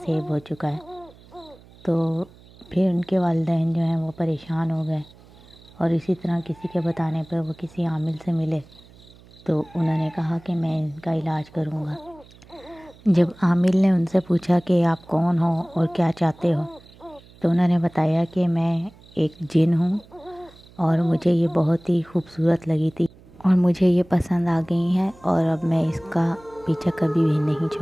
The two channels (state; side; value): noise; right; hum, 24 dB below the sound